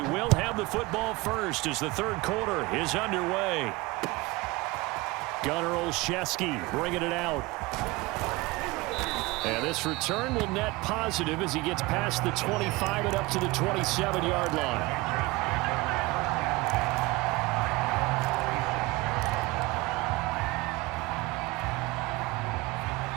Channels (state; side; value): quieter; left; 22.3 dB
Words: will have the football first as the third quarter is underway. Gunnar Olszewski bringing it out. And this return will net positive as he gets past the 25 and up to the 27-yard line.